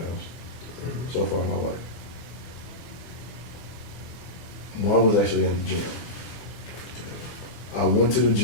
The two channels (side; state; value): right; late; 24 ms